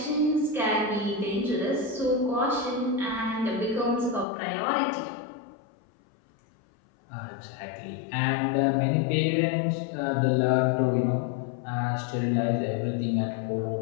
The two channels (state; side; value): drops out; right; at 4.2 s